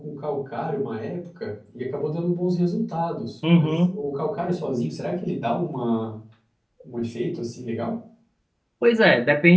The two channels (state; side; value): identical; both; correlation 1.00